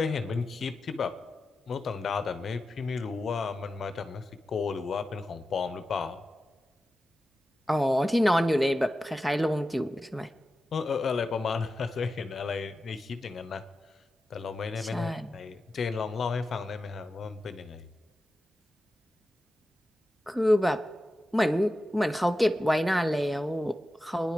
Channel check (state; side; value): normal; both; correlation 0.92